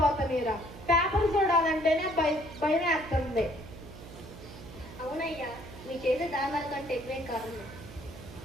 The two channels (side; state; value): right; noise; hum, 15 dB below the sound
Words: పేపర్ చూడాలంటేనే భయం వేస్తుంది. అవునయ్యా, మీ చేసే దారుణాల కంటే ఎక్కువేం కాదు.